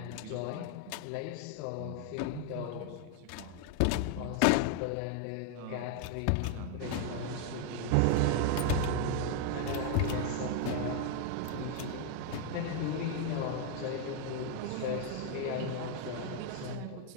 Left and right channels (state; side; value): different; both; correlation 0.00